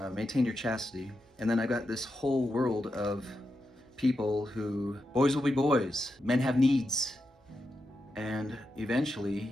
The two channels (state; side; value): normal; both; correlation 0.87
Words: maintain your chastity. And then I got this whole world of people who, boys will be boys, men have needs. And